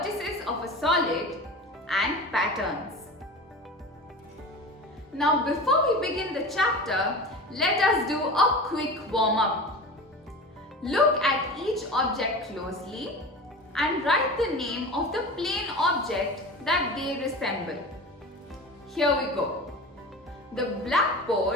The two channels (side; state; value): both; normal; correlation 0.32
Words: of a solid, and patterns. Now before we begin the chapter, let us do a quick warm-up. Look at each object closely and write the name of the plane object that they resemble. Here we go. The